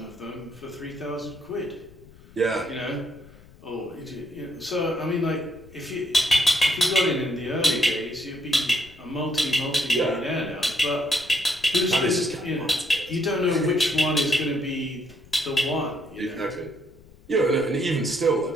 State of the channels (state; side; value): noise; left; rumble, 23 dB below the sound